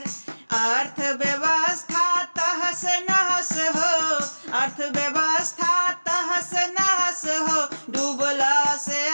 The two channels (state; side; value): inverted; both; correlation -1.00